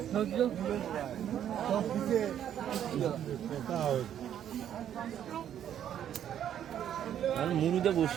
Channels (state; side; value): quieter; left; 10.1 dB